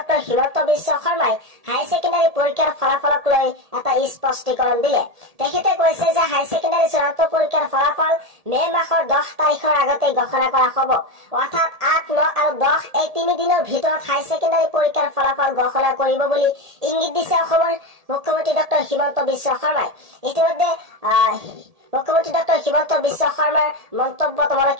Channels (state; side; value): late; left; 1.7 ms